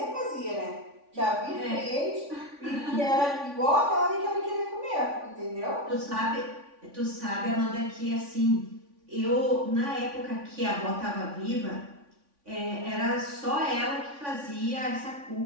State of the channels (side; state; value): left; late; 3.5 ms